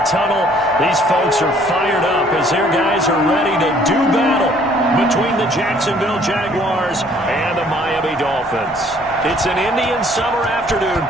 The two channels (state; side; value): normal; both; correlation 0.60